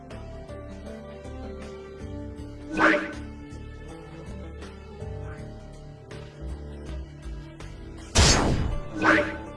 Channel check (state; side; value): identical; both; correlation 1.00